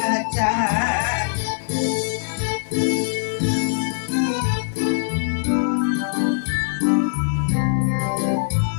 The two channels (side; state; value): right; silent; digital silence